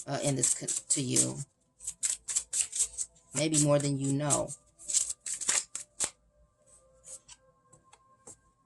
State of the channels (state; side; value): identical; both; correlation 1.00